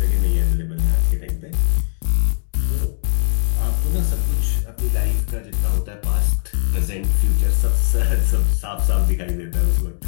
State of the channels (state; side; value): silent; right; digital silence